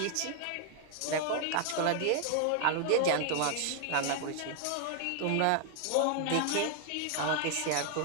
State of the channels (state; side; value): different; both; correlation 0.00